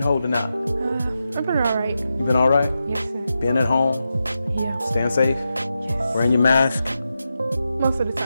holding out? I've been all right. You been all right? Yes, sir. Being at home? Yeah. Staying safe? Yes. Wearing your mask? Most of the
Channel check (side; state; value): both; inverted; correlation -0.89